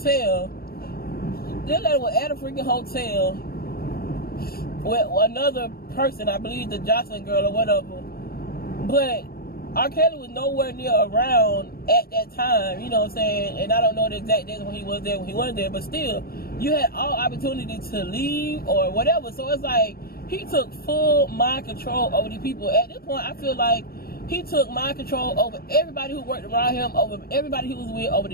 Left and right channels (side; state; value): right; late; 0.44 ms